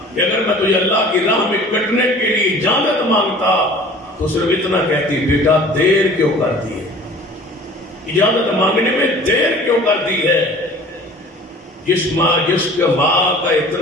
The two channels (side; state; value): both; normal; correlation 0.46